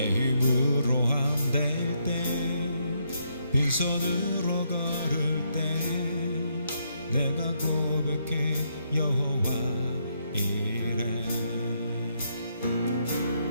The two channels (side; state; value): both; inverted; correlation -0.76